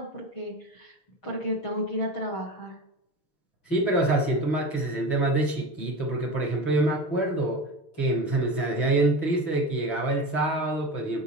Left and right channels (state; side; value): late; right; 6.1 ms